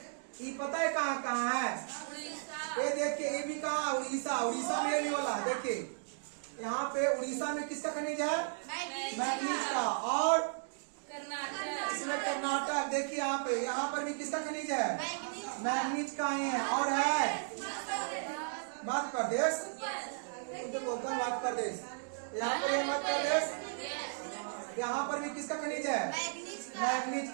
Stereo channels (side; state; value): left; silent; digital silence